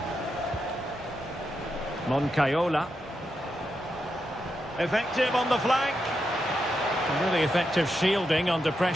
Moncayola. Effective on the flank. Really effective shielding under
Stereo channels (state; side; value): normal; both; correlation 0.85